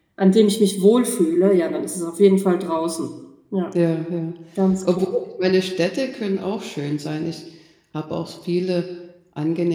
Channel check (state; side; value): identical; both; correlation 1.00